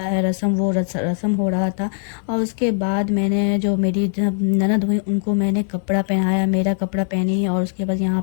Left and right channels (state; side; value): silent; right; 65 dB below the other